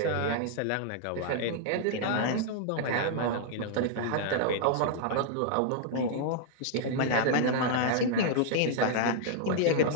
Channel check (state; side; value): different; both; correlation -0.01